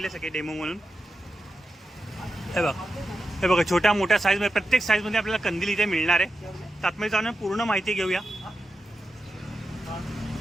सगळे डेमो म्हणून. हे बघा छोट्या मोठ्या साईजमध्ये प्रत्येक साईजमध्ये आपल्याला कंदील इथे मिळणार आहे. तर आतमध्ये जाऊन पूर्ण माहिती घेऊया.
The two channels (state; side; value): normal; both; correlation 0.90